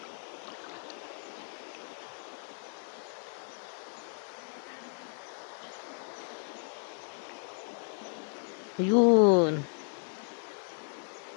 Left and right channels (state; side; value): silent; right; 55 dB below the other